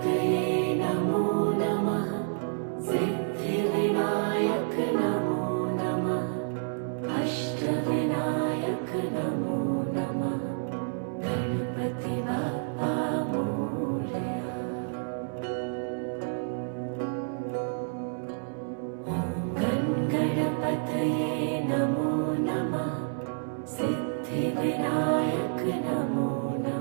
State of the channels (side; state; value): left; silent; 58 dB below the other